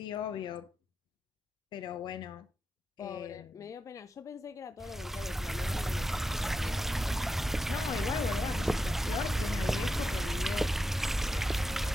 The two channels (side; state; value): both; normal; correlation 0.88